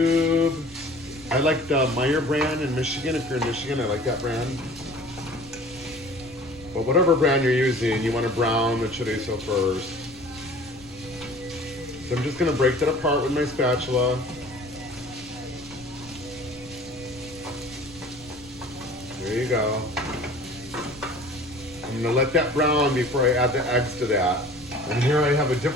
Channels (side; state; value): left; noise; rumble, 21 dB below the sound